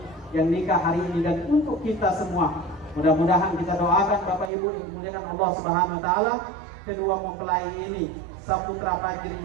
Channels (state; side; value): drops out; left; at 4.5 s